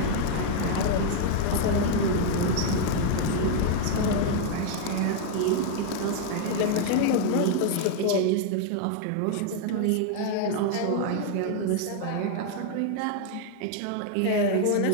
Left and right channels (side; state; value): both; different; correlation 0.00